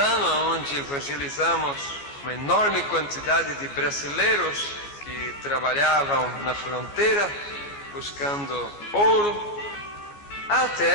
onde evangelizamos uma enorme quantidade de brasileiros que trabalhavam na fronteira buscando ouro.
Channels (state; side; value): late; right; 14 ms